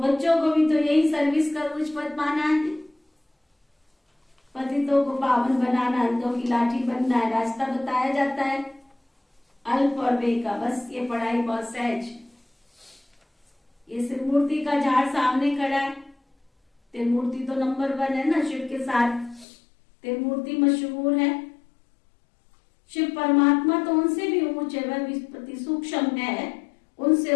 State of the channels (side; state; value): right; drops out; at 19.5 s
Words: को भी तो यही सर्विस का कुछ पद माना है, पतितों को पावन बनाना, अंधों की लाठी बनना है। रास्ता बताया जाता है अल्प और बे का, बस ये पढ़ाई बहुत सहज। ये त्रिमूर्ति का झाड़ सामने खड़ा है, त्रिमूर्ति तो नंबर 1 है ना शिव के साथ, त्रिमूर्ति मशहूर है। शिव परमात्मा तो उनसे भी ऊंच है, वह विस्पति सूक्ष्म है,